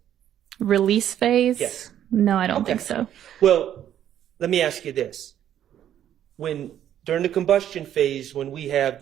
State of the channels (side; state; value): left; quieter; 10.8 dB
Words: Release phase? Yes. No, I don't think so. Well, let me ask you this. During the combustion phase, when we have